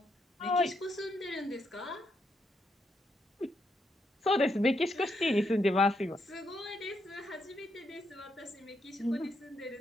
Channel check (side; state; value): both; normal; correlation 0.78